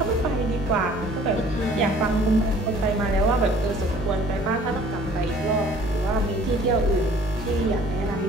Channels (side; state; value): both; normal; correlation 0.53